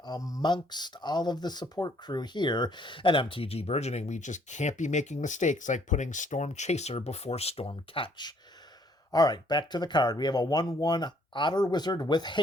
amongst all of the support crew here at MTG Burgeoning. We just can't be making mistakes like putting Storm Chaser before Storm Catch. All right, back to the card. We have a 1/1 Otter Wizard with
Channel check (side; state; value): both; normal; correlation 0.64